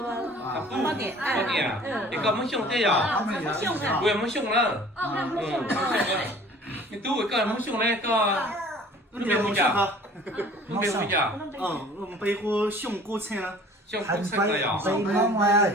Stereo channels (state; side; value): normal; both; correlation 0.49